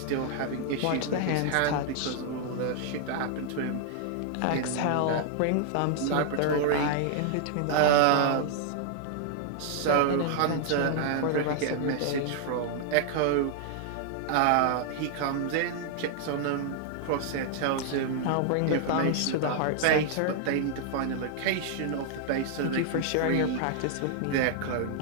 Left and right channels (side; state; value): both; different; correlation -0.01